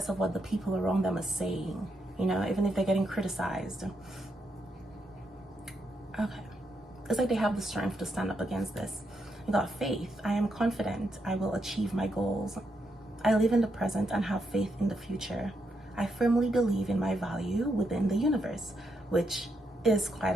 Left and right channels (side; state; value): both; normal; correlation 0.80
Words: of what the people around them are saying, you know, even if they're getting criticized. Okay. It's like they have the strength to stand up against this. You got faith. I am confident I will achieve my goals. I live in the present and have faith in the future. I firmly believe in my value within the universe, which is